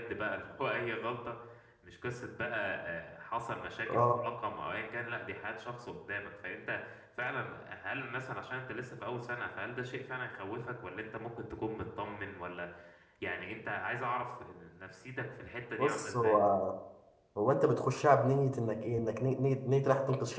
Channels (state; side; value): identical; both; correlation 1.00